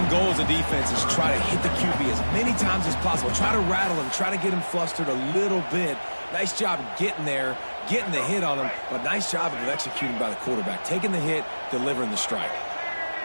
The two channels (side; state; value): both; inverted; correlation -1.00